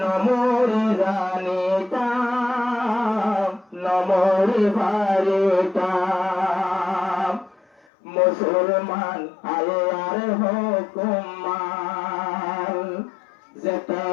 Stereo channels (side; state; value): right; drops out; at 7.8 s